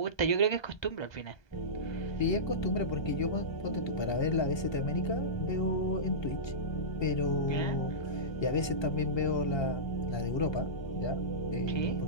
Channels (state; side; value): late; right; 1.2 ms